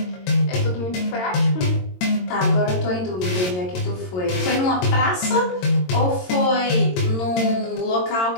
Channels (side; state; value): right; late; 22 ms